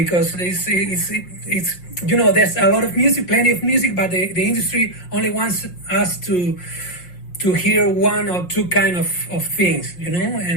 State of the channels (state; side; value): late; right; 5.6 ms